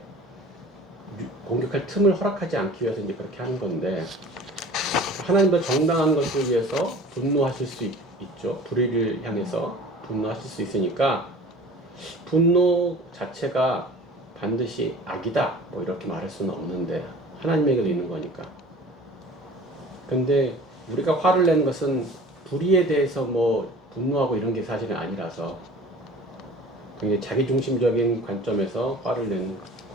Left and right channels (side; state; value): both; normal; correlation 0.43